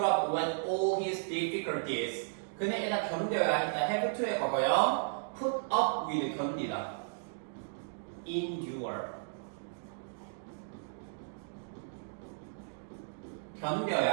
up with all his difficulties. 그는 일단 견뎌야 했다. have to의 과거요. put up with 견디다. endure.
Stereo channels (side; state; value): left; silent; digital silence